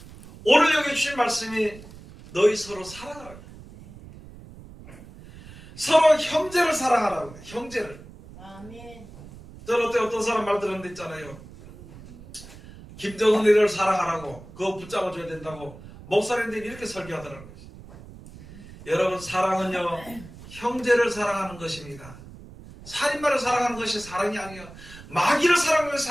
오늘 여기 주신 말씀이 너희 서로 사랑하라고, 서로 형제를 사랑하라고 해요. 형제를. 아멘. 저는 어떤 사람 말 들었는데 있잖아요. 김정은이를 사랑하라고, 그거 붙잡아줘야 된다고 목사님들이 이렇게 설교하더라고요. 여러분, 사랑은요 형제를 사랑하는 것입니다. 살인마를 사랑하는 것이 사랑이 아니에요. 마귀를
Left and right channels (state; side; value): noise; right; rumble, 18 dB below the sound